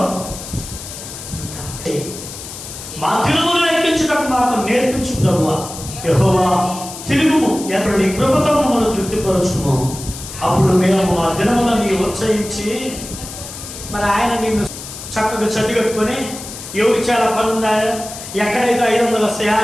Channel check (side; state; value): left; noise; hiss, 11 dB below the sound